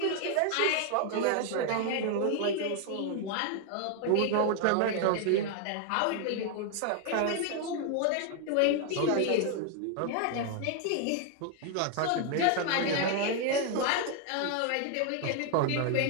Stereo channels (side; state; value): both; different; correlation 0.00